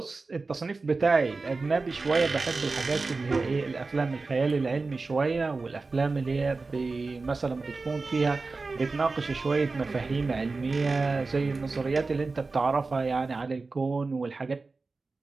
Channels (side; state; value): left; quieter; 3.8 dB